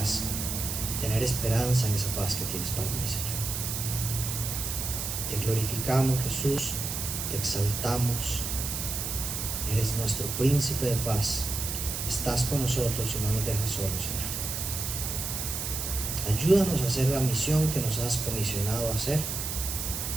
y tener esperanza en esa paz que tienes para mí, Señor. Te glorificamos, Jesús, te exaltamos. Eres nuestro príncipe de paz. Estás con nosotros y no nos dejas solos, Señor. Ayúdanos a hacer la misión que nos has comisionado a hacer.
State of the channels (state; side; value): noise; right; hiss, 3 dB below the sound